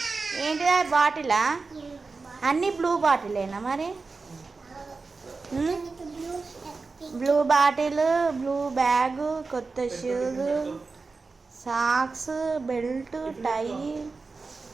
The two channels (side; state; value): left; quieter; 4.1 dB